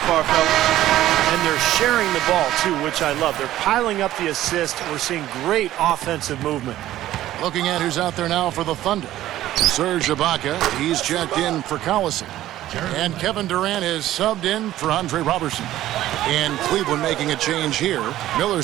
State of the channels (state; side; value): quieter; left; 14.0 dB